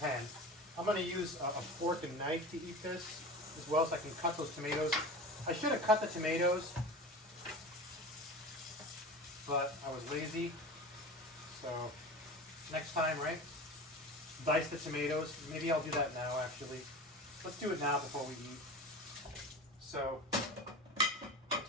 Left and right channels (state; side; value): normal; both; correlation 0.32